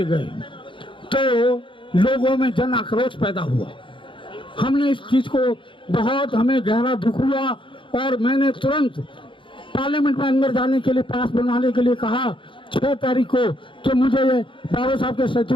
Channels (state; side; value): late; right; 0.24 ms